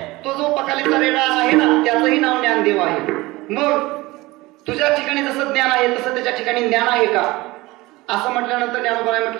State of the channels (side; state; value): left; quieter; 20.7 dB